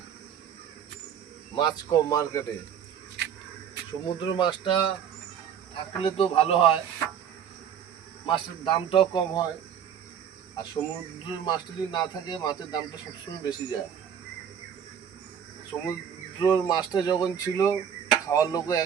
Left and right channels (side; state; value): left; quieter; 8.3 dB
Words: মাছ কম মার্কেটে। সমুদ্র মাছটা থাকলে তো ভালো হয়, মাছের দামটাও কম হয়। আর সমুদ্রের মাছটা যদি না থাকে, মাছের দামটা সবসময় বেশি যায়। সমুদ্রের মাছটা যখন ছিল, খাওয়ার লোকও